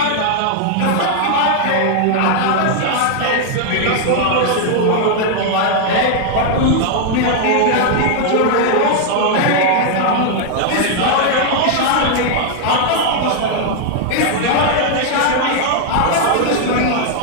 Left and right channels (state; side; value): different; both; correlation 0.00